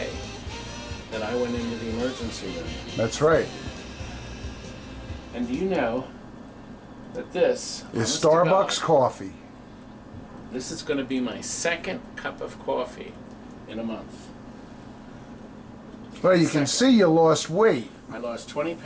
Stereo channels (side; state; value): both; identical; correlation 1.00